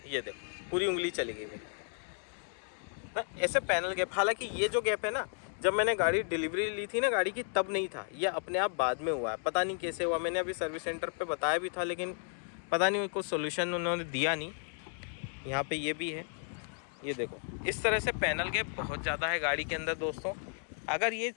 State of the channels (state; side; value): silent; right; 55 dB below the other